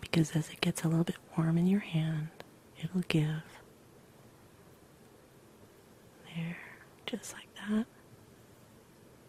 because as it gets a little bit warm in your hand, it'll give. There, just like that.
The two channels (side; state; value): both; identical; correlation 1.00